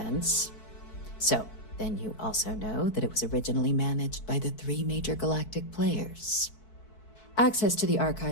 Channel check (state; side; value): late; right; 4.6 ms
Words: So, then you also know that it was originally managed by the 3 major galactic players. Access to the